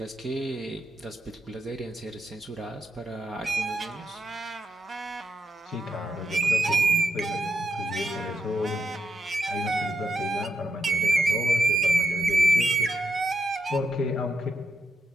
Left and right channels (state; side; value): normal; both; correlation 0.83